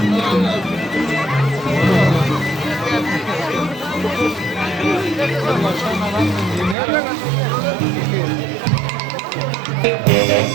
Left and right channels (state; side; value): drops out; left; at 6.8 s